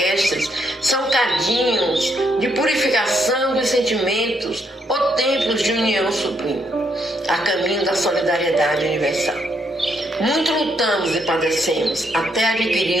são cadinhos de purificação dos sentimentos ou templos de união sublime, a caminho da solidariedade universal. Muito lutamos e padecemos até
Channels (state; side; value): normal; both; correlation 0.75